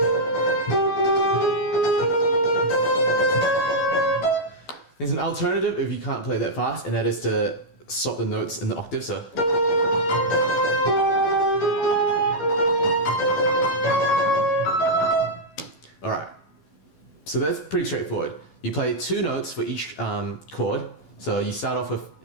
There's an alternative if you can't play that fast, and that is to swap the notes in the octave. So, all right. So that's pretty straightforward. You play 2 notes for each chord. So you start off with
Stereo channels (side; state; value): right; late; 13 ms